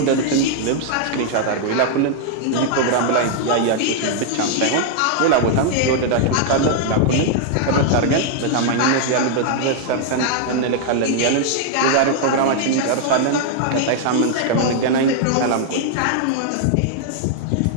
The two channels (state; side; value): different; both; correlation 0.00